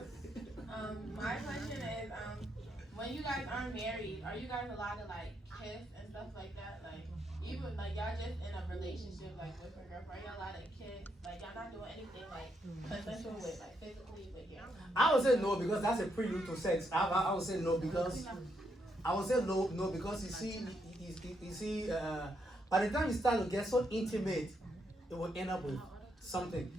My question is, when you guys aren't married, are you guys allowed to like kiss and stuff like that? Like even like y'all just in a relationship like with your girlfriend, y'all allowed to kiss? Like y'all not doing anything like consensual with like physically with your. I would say no because that's a prelude to sex. I would say no because you see by the time you start to get so intimate, it will end up with something.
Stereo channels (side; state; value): both; normal; correlation 0.78